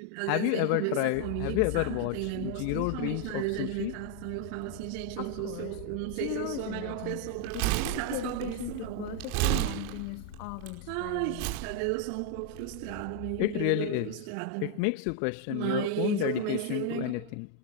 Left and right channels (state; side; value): different; both; correlation 0.00